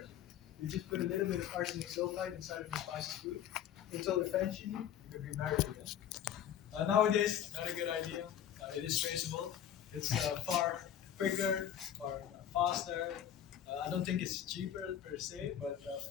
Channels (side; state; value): right; quieter; 10.1 dB